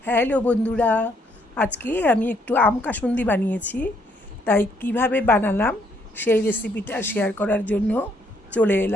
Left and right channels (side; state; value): both; normal; correlation 0.70